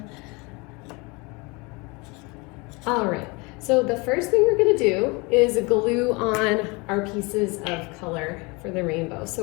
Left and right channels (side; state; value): right; quieter; 27.4 dB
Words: All right, so the first thing we're gonna do is glue on our pieces of color for the rainbow.